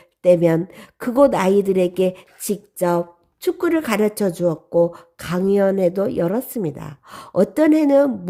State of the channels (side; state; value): both; identical; correlation 1.00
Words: 때면 그곳 아이들에게 직접 축구를 가르쳐 주었고 강연회도 열었습니다. 어떤 해는